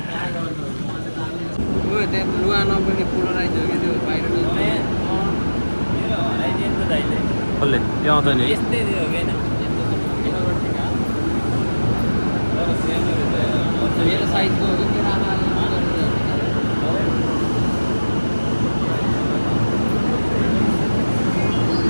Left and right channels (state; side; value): inverted; both; correlation -1.00